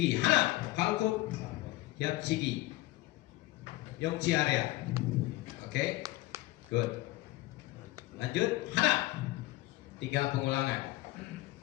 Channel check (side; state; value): right; quieter; 18.3 dB